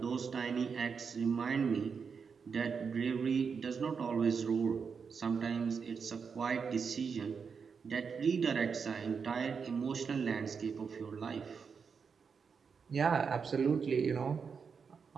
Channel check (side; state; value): left; quieter; 5.9 dB